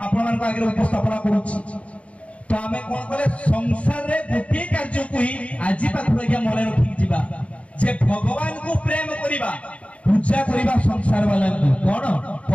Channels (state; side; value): late; right; 0.065 ms